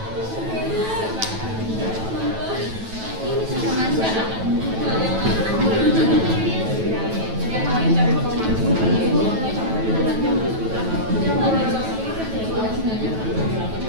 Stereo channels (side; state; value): left; late; 9.2 ms